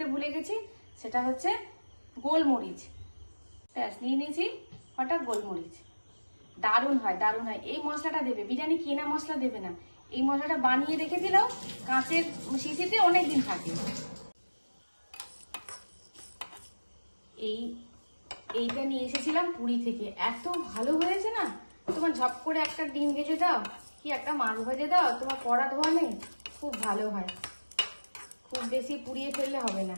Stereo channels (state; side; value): inverted; both; correlation -1.00